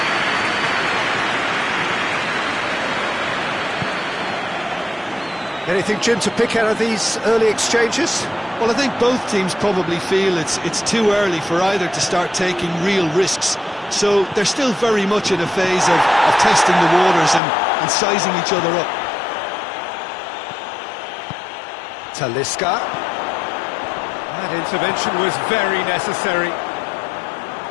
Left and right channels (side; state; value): right; drops out; at 17.4 s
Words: Anything, Jim, to pick out of these early exchanges? Well, I think both teams probably feel it's too early for either to start taking real risks. So they're still very much in a phase of testing the waters and sizing each other up. Talisca. That intervention was very necessary.